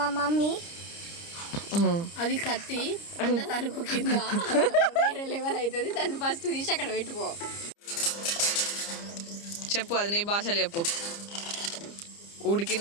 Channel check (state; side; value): late; right; 30 ms